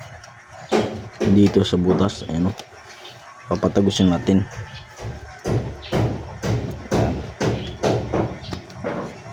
dito sa butas. Ayan o, papatagusin natin.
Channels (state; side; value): identical; both; correlation 1.00